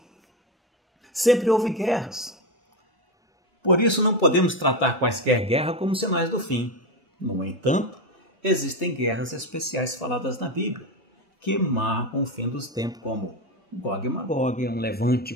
Sempre houve guerras. Por isso, não podemos tratar quaisquer guerra como sinais do fim. No entanto, existem guerras especiais faladas na Bíblia, que marcam o fim dos tempos, como Gog e Magog, um levante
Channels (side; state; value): both; normal; correlation 0.14